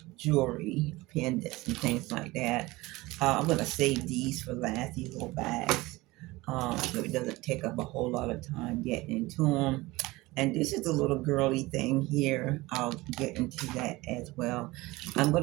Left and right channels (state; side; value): quieter; left; 20.6 dB